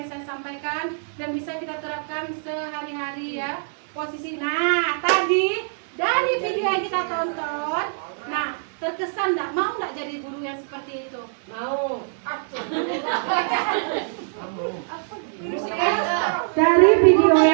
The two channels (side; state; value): left; silent; digital silence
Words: saya sampaikan dan bisa kita terapkan sehari-hari ya. Posisi. Nah, tadi dari video yang kita tonton, nah terkesan enggak mau enggak jadi guru yang seperti itu? Mau. Dari video